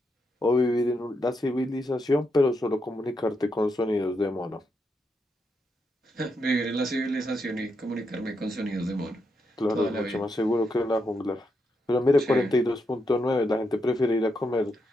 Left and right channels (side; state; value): both; normal; correlation 0.82